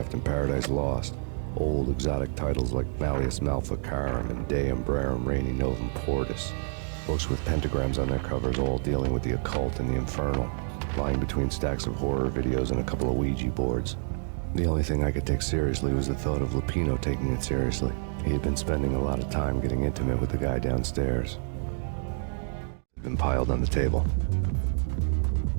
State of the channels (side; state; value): left; silent; digital silence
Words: and Paradise Lost. Old exotic titles like Malleus Maleficarum and De Umbrarum Reini Novum Portus. Books with pentagrams on their covers, all dealing with the occult and the infernal, lying between stacks of horror videos and a couple of Ouija boards. The only thing I could take seriously was the thought of Lupino taking it seriously. He had been spending a lot of time getting intimate with the guy downstairs. It had been piled on the table.